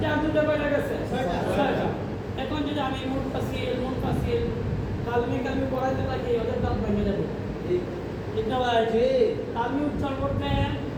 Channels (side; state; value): both; identical; correlation 1.00